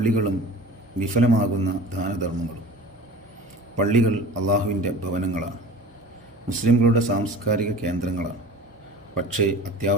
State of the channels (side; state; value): both; normal; correlation 0.40